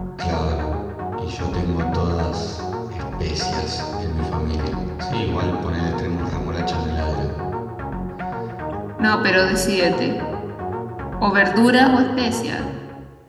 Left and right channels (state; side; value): identical; both; correlation 1.00